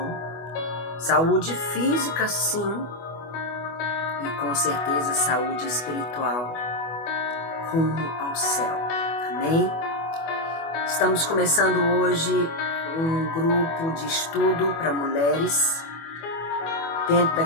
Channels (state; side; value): late; right; 24 ms